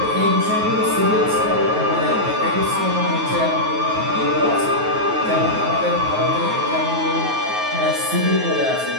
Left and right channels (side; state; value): left; late; 9.4 ms